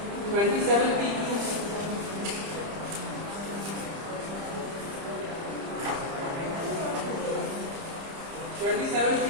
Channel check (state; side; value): late; left; 30 ms